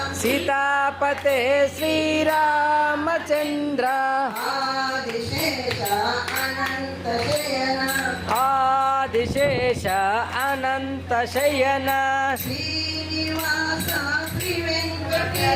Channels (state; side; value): identical; both; correlation 1.00